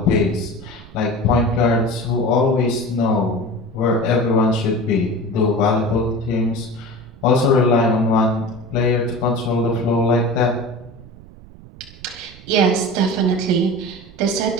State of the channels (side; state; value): right; noise; rumble, 20 dB below the sound